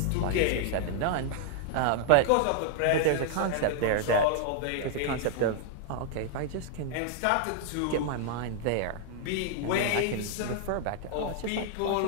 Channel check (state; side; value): different; both; correlation -0.01